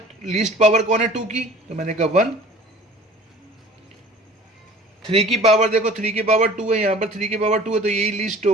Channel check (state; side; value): normal; both; correlation 0.46